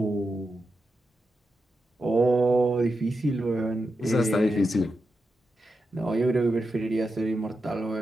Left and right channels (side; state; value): both; normal; correlation 0.88